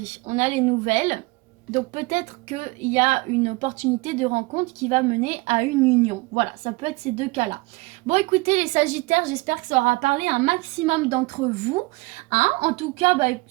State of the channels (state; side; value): quieter; left; 24.0 dB